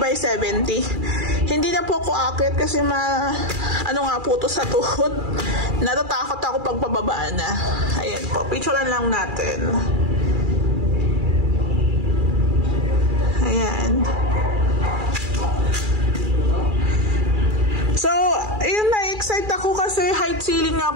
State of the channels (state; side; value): late; left; 2.4 ms